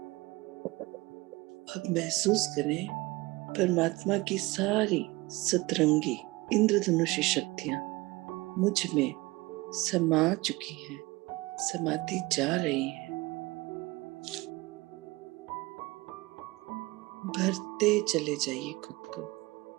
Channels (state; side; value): quieter; left; 22.0 dB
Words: अब महसूस करें परमात्मा की सारी सतरंगी इंद्रधनुषी शक्तियां मुझ में समा चुकी हैं, समाती जा रही हैं। भरते चले जाइए खुद को।